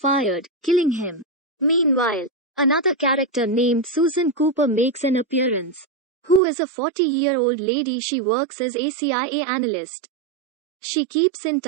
killing him. Meanwhile, another character named Susan Cooper makes an appearance, who is a 40-year-old lady. She works as a CIA analyst. She keeps in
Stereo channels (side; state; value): left; drops out; at 6.4 s